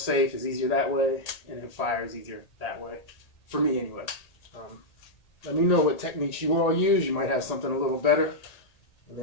is easier that way, and then fire is easier that way, for me anyway. Let me know what techniques you all use. You might have something a little better, and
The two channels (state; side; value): late; right; 1.8 ms